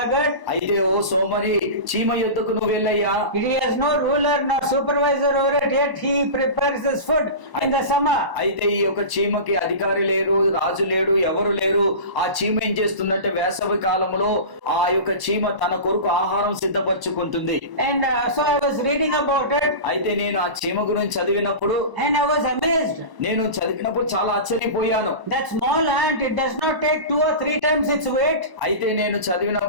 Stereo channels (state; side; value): late; left; 1.0 ms